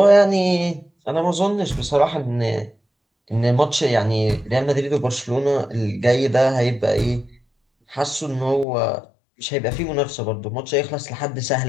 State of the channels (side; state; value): right; drops out; at 8.7 s